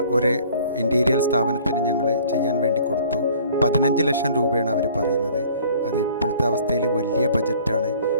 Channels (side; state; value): both; inverted; correlation -0.53